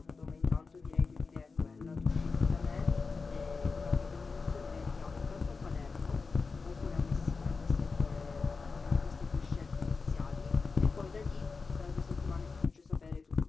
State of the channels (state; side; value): quieter; right; 4.5 dB